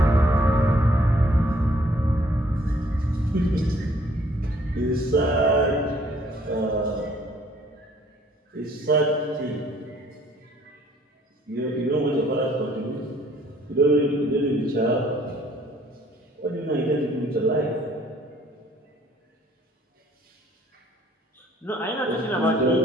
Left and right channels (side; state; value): both; normal; correlation 0.60